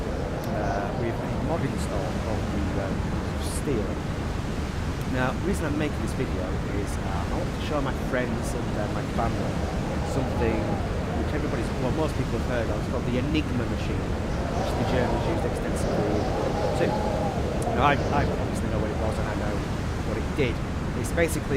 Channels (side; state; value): both; identical; correlation 1.00